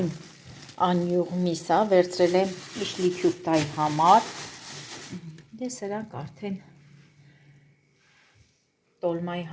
անյուղ միսա վերցրել եմ իշլիքյուր տայի համար, դե սրանք արդեն տոլմայի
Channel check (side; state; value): both; identical; correlation 1.00